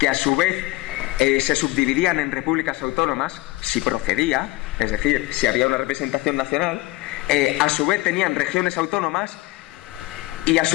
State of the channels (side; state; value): right; quieter; 20.6 dB